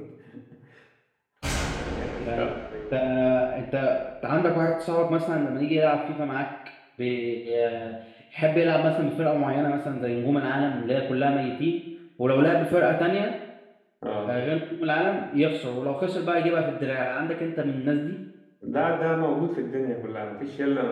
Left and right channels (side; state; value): both; identical; correlation 1.00